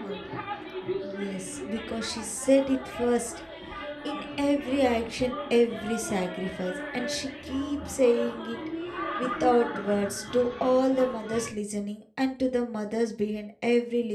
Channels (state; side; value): identical; both; correlation 1.00